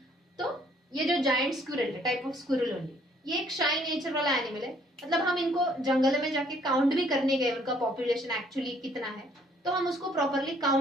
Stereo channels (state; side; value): normal; both; correlation 0.63